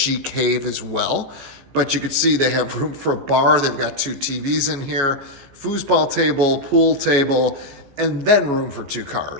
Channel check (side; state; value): left; late; 14 ms